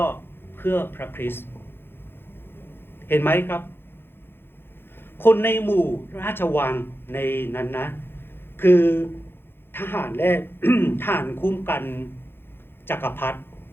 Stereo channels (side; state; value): right; late; 0.11 ms